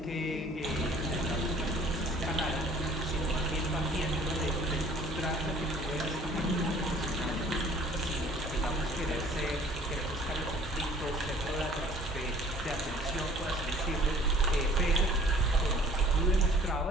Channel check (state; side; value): normal; both; correlation 0.53